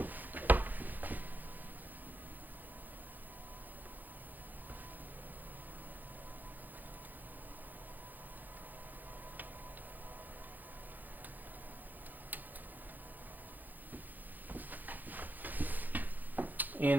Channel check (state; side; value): late; left; 0.085 ms